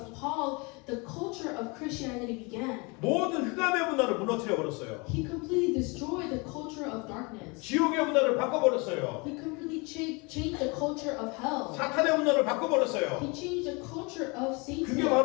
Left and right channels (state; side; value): quieter; right; 29.1 dB